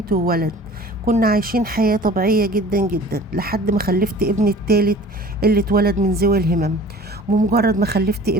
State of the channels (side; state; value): both; normal; correlation 0.45